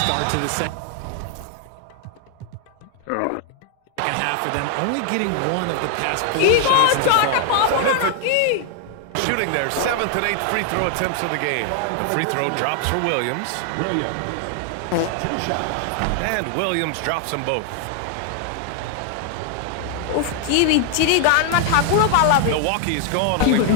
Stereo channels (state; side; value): different; both; correlation 0.00